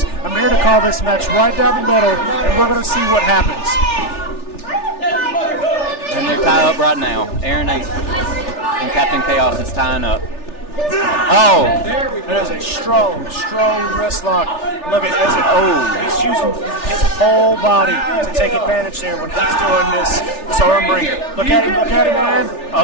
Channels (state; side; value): late; right; 3.4 ms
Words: I'm here to call this match right down the middle, and we're going to see what happens. And they're tied up right now. Aaron Ace And Captain Chaos is tying up. Oh! That is a strong wrist lock. Look at he's using his whole body to take advantage there when he's doing this arm wringer. Look at him, man.